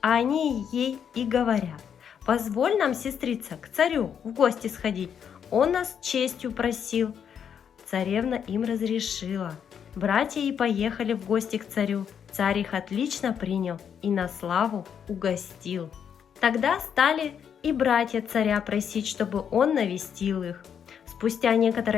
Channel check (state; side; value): quieter; right; 8.0 dB